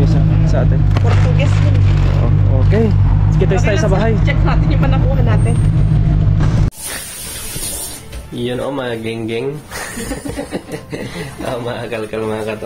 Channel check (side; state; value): both; identical; correlation 1.00